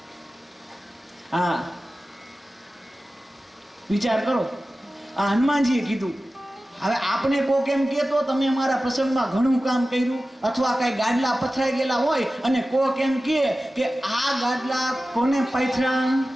હા, વિચાર કરો, આ હનુમાનજીએ કીધું. હવે આપણે કોક એમ કહેતો તમે અમારા પ્રસંગમાં ઘણું કામ કર્યું, અથવા કઈ ગાડલા પથરાઈ ગયેલા હોય અને કોક એમ કહે કે આ ગાડલા કોને પાથરા.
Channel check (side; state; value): both; normal; correlation 0.95